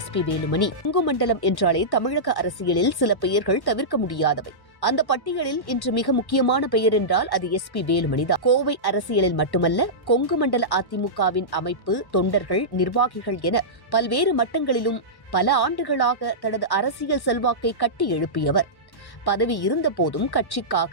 வேலுமணி. கொங்கு மண்டலம் என்றாலே தமிழக அரசியலில் சில பெயர்கள் தவிர்க்க முடியாதவை. அந்த பட்டியலில் இன்று மிக முக்கியமான பெயர் என்றால் அது எஸ்பி வேலுமணிதான். கோவை அரசியலில் மட்டுமல்ல, கொங்கு மண்டல அதிமுகவின் அமைப்பு, தொண்டர்கள், நிர்வாகிகள் என பல்வேறு மட்டங்களிலும் பல ஆண்டுகளாக தனது அரசியல் செல்வாக்கை கட்டி எழுப்பியவர். பதவி இருந்த போதும்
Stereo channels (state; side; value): late; right; 1.1 ms